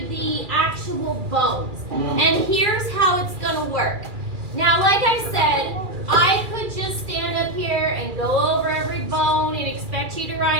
the actual bones. And here's how it's going to work. Now, like I said, I could just stand up here and go over every bone and expect you to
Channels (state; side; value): late; left; 2.4 ms